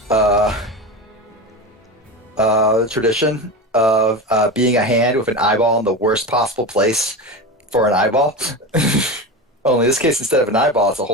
tradition of being a hand with an eyeball in the worst possible place for an eyeball. Only in this case, instead of an eyeball, it's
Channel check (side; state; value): both; normal; correlation 0.24